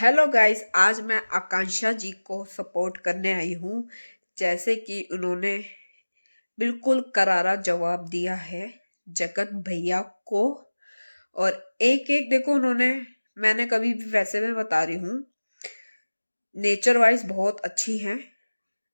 guys, आज मैं आकांक्षा जी को सपोर्ट करने आई हूँ। जैसे कि उन्होंने बिल्कुल करारा जवाब दिया है जगत भैया को। और एक एक देखो उन्होंने, मैंने कभी भी, वैसे मैं बता रही हूँ, नेचर वाइज बहुत अच्छी हैं।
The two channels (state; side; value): inverted; both; correlation -1.00